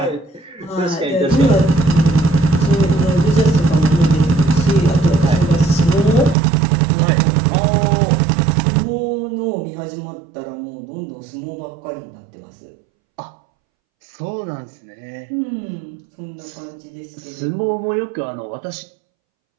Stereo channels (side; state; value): left; drops out; at 6.4 s